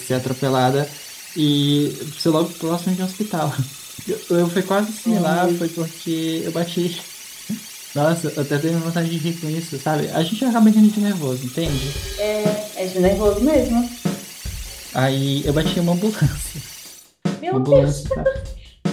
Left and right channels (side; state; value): both; identical; correlation 1.00